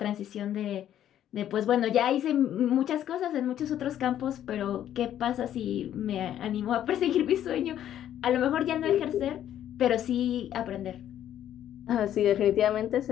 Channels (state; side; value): quieter; right; 11.1 dB